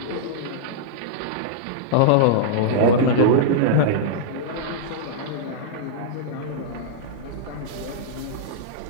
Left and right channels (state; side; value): different; both; correlation -0.02